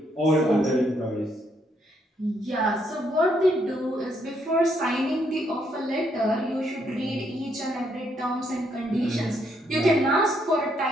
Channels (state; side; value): normal; both; correlation 0.73